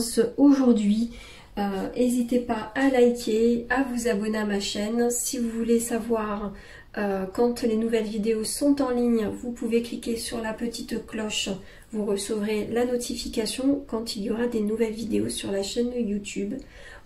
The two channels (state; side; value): identical; both; correlation 1.00